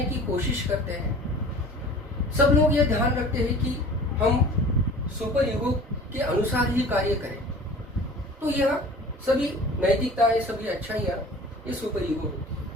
की कोशिश करते हैं। सब लोग यह ध्यान रखते हैं कि हम सुपर ईगो के अनुसार ही कार्य करें। तो यह सभी नैतिकताएं, सभी अच्छाइयाँ, ये सुपर ईगो होती है।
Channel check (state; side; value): normal; both; correlation 0.43